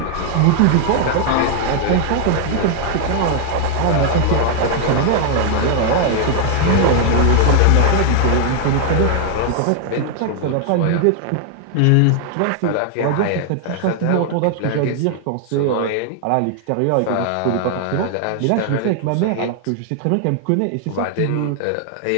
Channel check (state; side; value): different; both; correlation 0.00